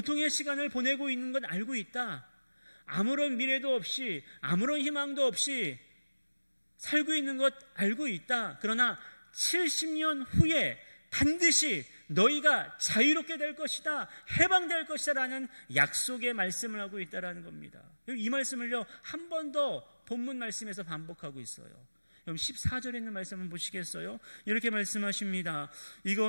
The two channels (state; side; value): inverted; both; correlation -1.00